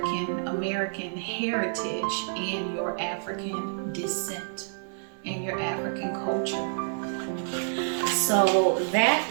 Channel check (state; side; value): silent; left; digital silence